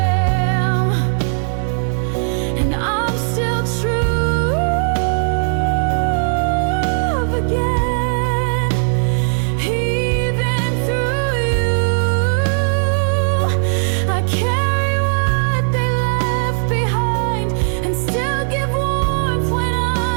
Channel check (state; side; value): silent; left; 68 dB below the other